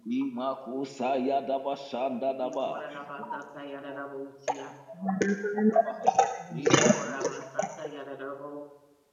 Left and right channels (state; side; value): identical; both; correlation 1.00